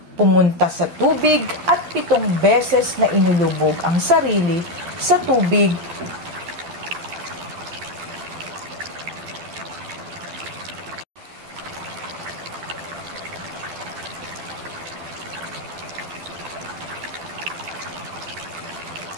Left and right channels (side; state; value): left; late; 12 ms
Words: pumunta sa tubig at 7 beses na inulubog ang sarili sa tubig.